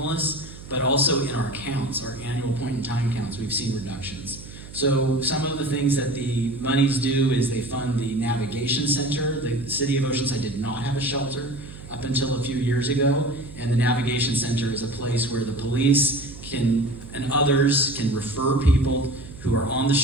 but also in our counts, our annual point-in-time counts, we've seen reductions. So some of the things that the monies do is they fund the navigation center. The city of Oceanside did not have a shelter up until a few years ago, and the navigation center is a place where the police and others can refer people who are on the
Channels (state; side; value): noise; right; hum, 16 dB below the sound